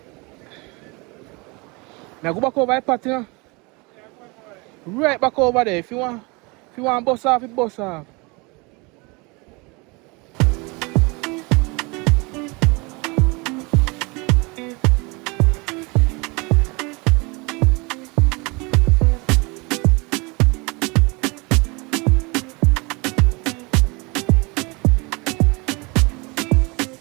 Now go back over the party, you know? Right back over there. If you want bus off, you bus off.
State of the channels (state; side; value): quieter; left; 27.7 dB